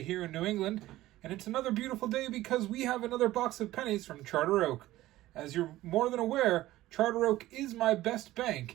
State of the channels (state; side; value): quieter; left; 16.1 dB